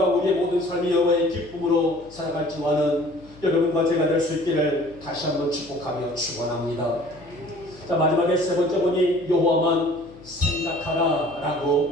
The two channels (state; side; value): noise; left; hum, 24 dB below the sound